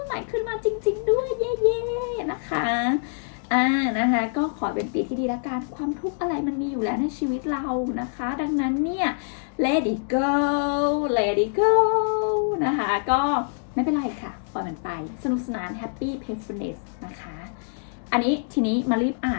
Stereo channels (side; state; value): right; silent; digital silence